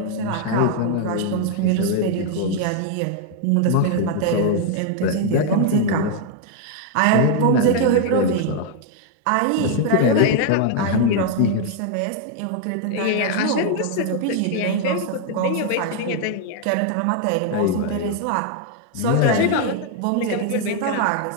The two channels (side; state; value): both; different; correlation 0.00